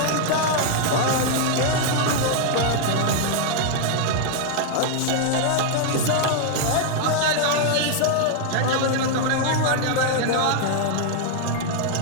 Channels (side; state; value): both; different; correlation 0.00